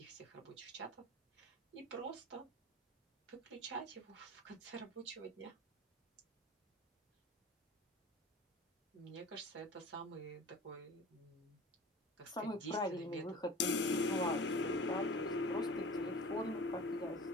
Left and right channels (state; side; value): normal; both; correlation 0.39